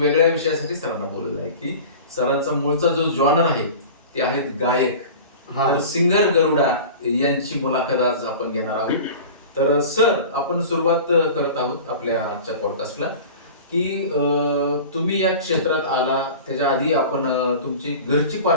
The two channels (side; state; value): both; inverted; correlation -0.37